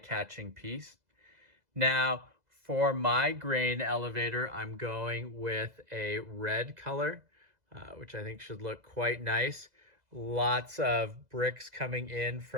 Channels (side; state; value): left; late; 2.0 ms